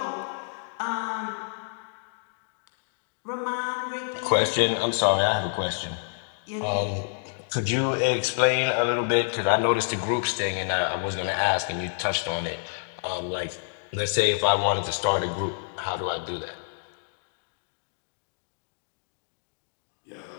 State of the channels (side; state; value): right; silent; digital silence